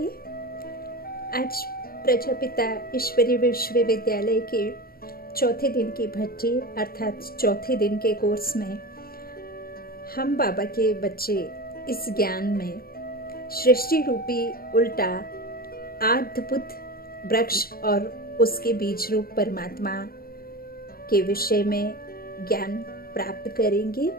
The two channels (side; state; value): right; late; 0.43 ms